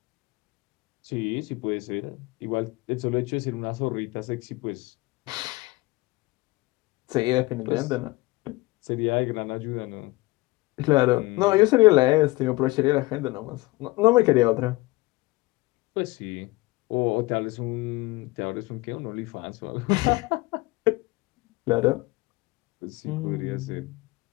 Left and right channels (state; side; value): quieter; right; 21.6 dB